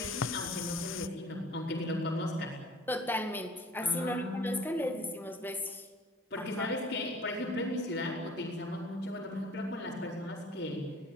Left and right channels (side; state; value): both; normal; correlation 0.49